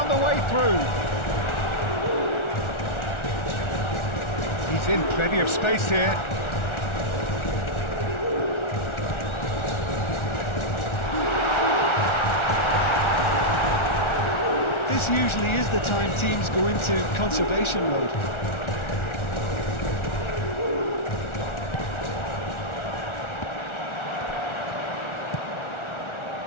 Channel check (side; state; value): right; late; 1.4 ms